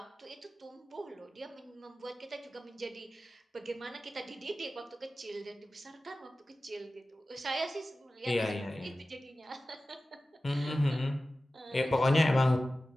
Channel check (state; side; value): normal; both; correlation 0.95